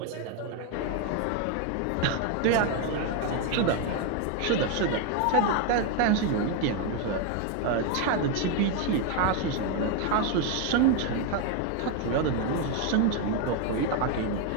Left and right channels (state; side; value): different; both; correlation 0.01